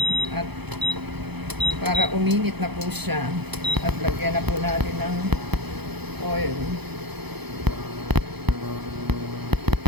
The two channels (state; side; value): late; left; 0.98 ms